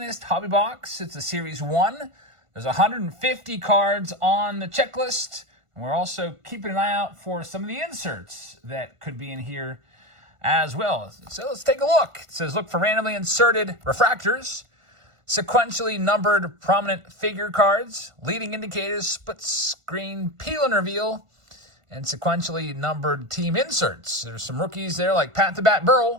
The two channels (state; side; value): late; left; 1.5 ms